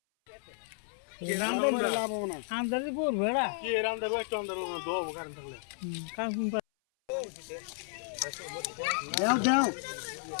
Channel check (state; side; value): silent; right; 56 dB below the other